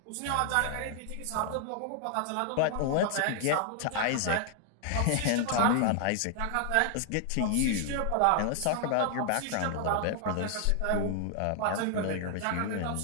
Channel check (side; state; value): both; different; correlation 0.00